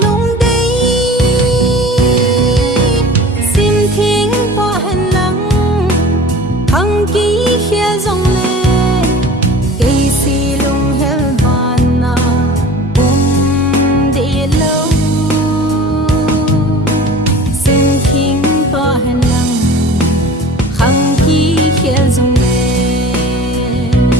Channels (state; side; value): normal; both; correlation 0.41